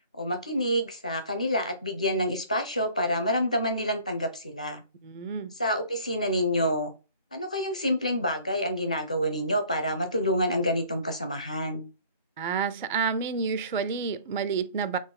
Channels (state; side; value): inverted; both; correlation -0.51